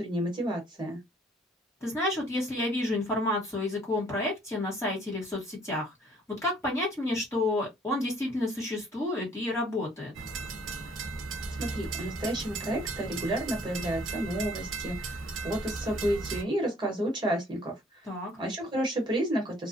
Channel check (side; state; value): both; normal; correlation 0.59